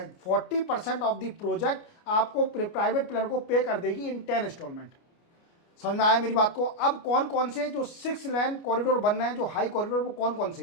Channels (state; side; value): late; right; 29 ms